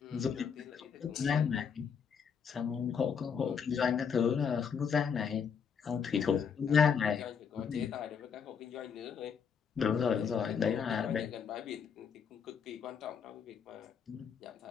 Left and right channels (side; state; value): right; quieter; 6.8 dB